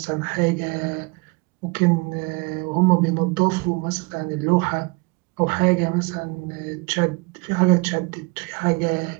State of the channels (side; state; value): left; quieter; 28.6 dB